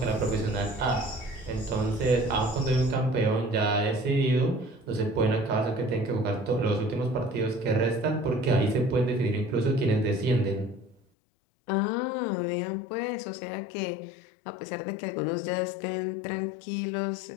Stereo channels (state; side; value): drops out; right; at 11.0 s